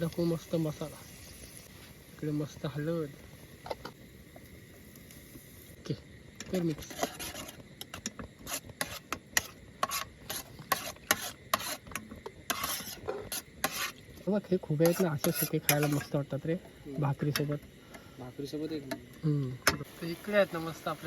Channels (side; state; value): both; identical; correlation 1.00